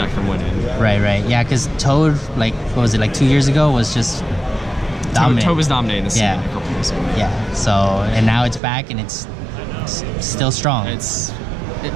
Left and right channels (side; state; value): left; drops out; at 8.6 s